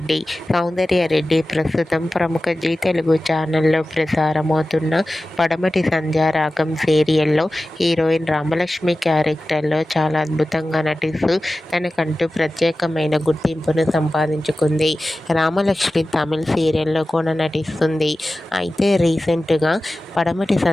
Soundarya Reddy ప్రస్తుతం ప్రముఖ G Telugu ఛానల్లో ప్రసారమవుతున్న పడమటి సంధ్యారాగం సీరియల్లో హీరోయిన్ రామలక్ష్మి క్యారెక్టర్లో చాలా అద్భుతంగా నటిస్తూ తనకంటూ ప్రత్యేకమైన గుర్తింపును సంపాదించుకుంది. రామలక్ష్మి తమిళ్ సీరియల్లో కూడా నటిస్తుంది. అయితే రీసెంట్గా పడమటి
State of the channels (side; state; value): both; normal; correlation 0.95